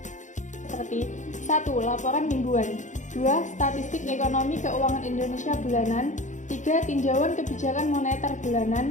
seperti 1. Laporan mingguan, 2. Statistik ekonomi keuangan Indonesia bulanan, 3. Tinjauan kebijakan moneter bulanan,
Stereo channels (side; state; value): right; late; 0.36 ms